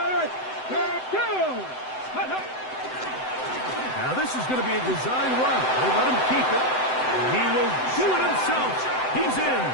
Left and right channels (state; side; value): late; right; 7.8 ms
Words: Now this is going to be a design run. We'll let him keep it. And he will do it himself. He's in.